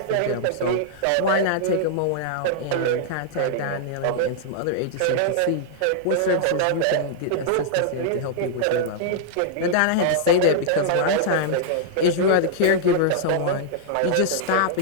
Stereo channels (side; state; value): both; different; correlation -0.01